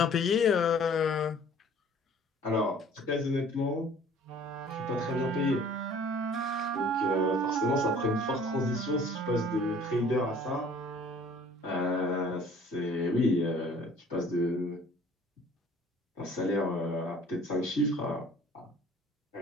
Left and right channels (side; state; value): both; normal; correlation 0.51